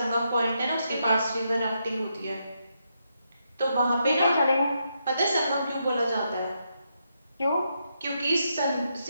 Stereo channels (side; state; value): both; inverted; correlation -0.81